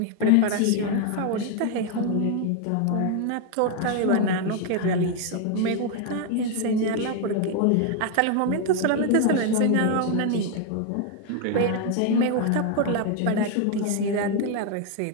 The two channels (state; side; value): different; both; correlation 0.01